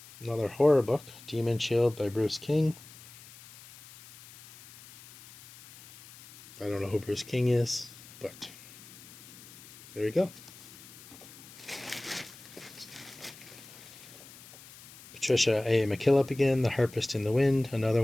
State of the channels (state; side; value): noise; left; hiss, 19 dB below the sound